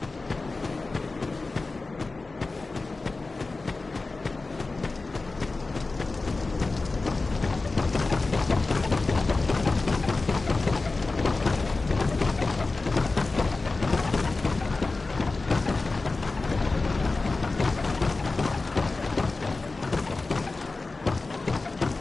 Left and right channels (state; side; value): quieter; right; 3.6 dB